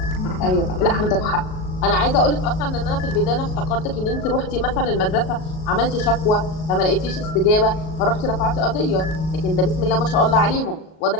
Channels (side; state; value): right; late; 38 ms